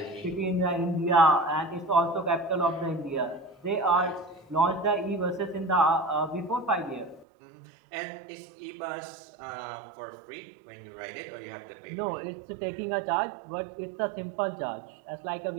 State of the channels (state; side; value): drops out; left; at 7.2 s